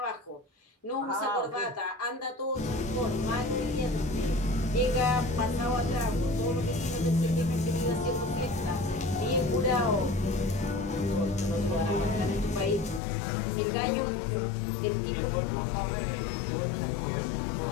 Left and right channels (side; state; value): right; drops out; at 13.0 s